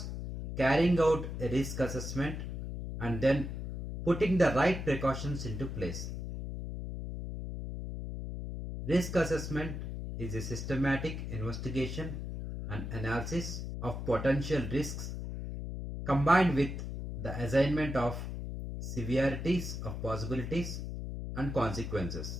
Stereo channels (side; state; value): left; noise; hum, 6 dB below the sound